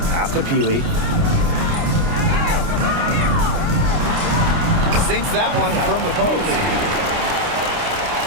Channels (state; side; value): late; left; 29 ms